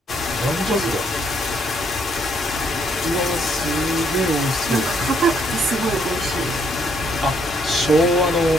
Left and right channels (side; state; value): both; normal; correlation 0.70